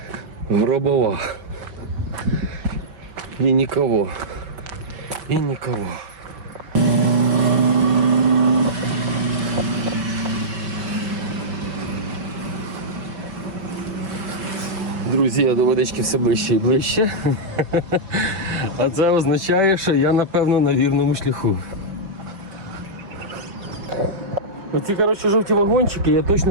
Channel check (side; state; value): left; late; 5.5 ms